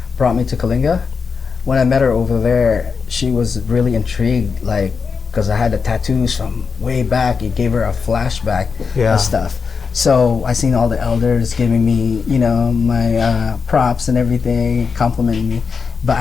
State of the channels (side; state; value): right; quieter; 5.4 dB